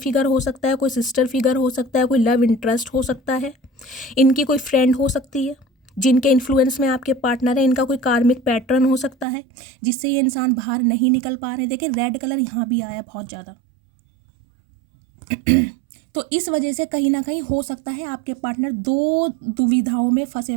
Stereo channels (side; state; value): left; drops out; at 9.2 s